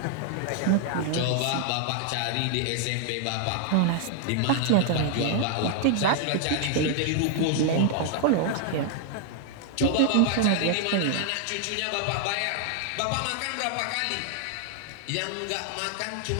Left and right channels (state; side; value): different; both; correlation 0.00